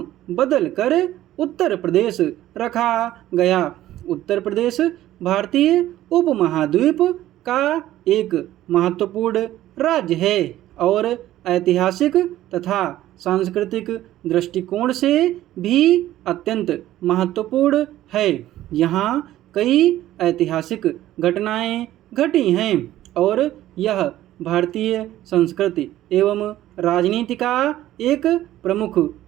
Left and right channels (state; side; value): quieter; left; 14.0 dB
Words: बदलकर उत्तर प्रदेश रखा गया। उत्तर प्रदेश भारतीय उपमहाद्वीप का एक महत्वपूर्ण राज्य है और ऐतिहासिक तथा सांस्कृतिक दृष्टिकोण से भी अत्यंत महत्वपूर्ण है। यहाँ कई ऐतिहासिक घटनाएं घटी हैं और यह भारतीय संस्कृति एवं राजनीति का एक प्रमुख